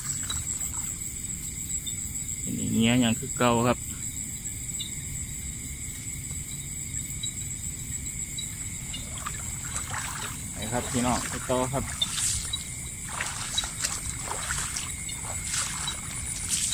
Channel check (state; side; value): identical; both; correlation 1.00